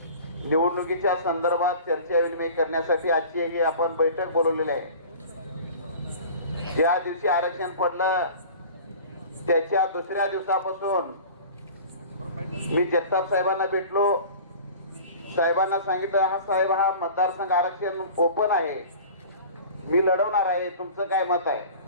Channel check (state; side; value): inverted; both; correlation -0.41